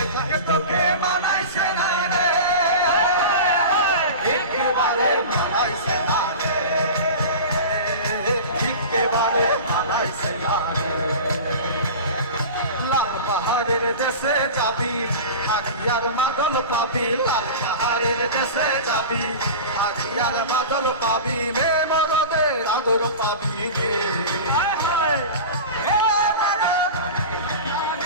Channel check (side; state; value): both; inverted; correlation -0.31